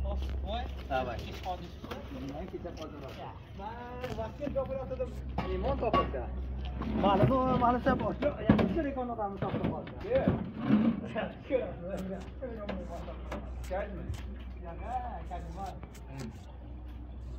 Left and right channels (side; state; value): both; identical; correlation 1.00